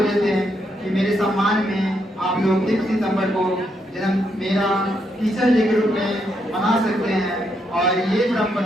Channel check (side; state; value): both; normal; correlation 0.78